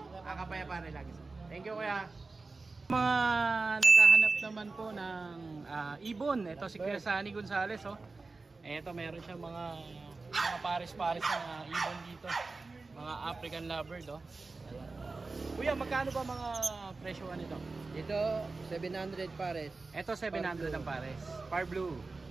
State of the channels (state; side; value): quieter; left; 3.8 dB